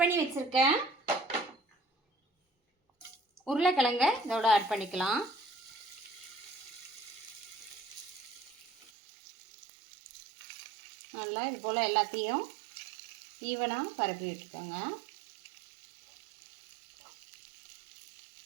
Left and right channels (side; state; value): left; drops out; at 8.9 s